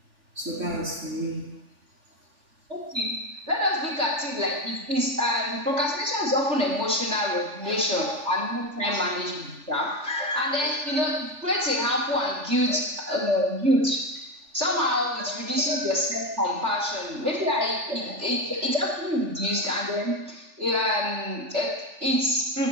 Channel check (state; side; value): late; left; 3.4 ms